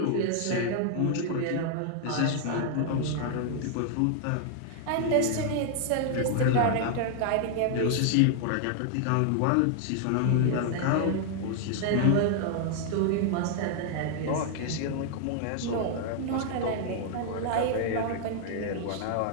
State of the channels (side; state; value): both; different; correlation 0.00